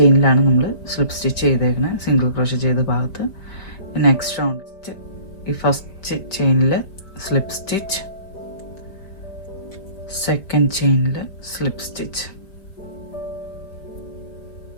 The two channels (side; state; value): right; late; 5.1 ms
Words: നമ്മൾ സ്ലിപ്പ് സ്റ്റിച്ച് ചെയ്തേക്കുന്നത്, സിംഗിൾ ക്രോഷേ ചെയ്ത ഭാഗത്ത്. നെക്സ്റ്റ് റൗണ്ട് ഈ ഫസ്റ്റ് ചെയിനിൽ സ്ലിപ്പ് സ്റ്റിച്ച്, സെക്കൻഡ് ചെയിനിൽ സ്ലിപ്പ് സ്റ്റിച്ച്.